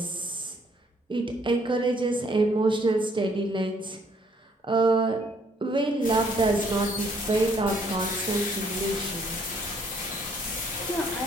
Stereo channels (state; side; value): normal; both; correlation 0.65